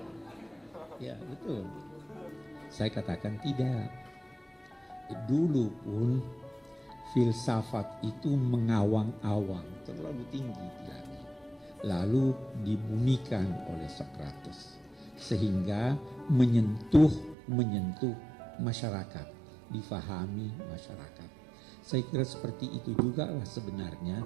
Ya betul. Saya katakan tidak. Dulu pun filsafat itu mengawang-awang, terlalu tinggi lagi. Lalu dibumikan oleh Socrates. Sehingga menyentuh masyarakat, difahami masyarakat. Saya kira seperti itu juga lah sebenarnya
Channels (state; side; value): drops out; left; at 17.4 s